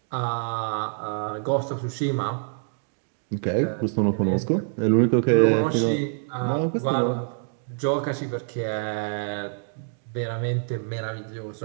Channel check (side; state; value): left; silent; digital silence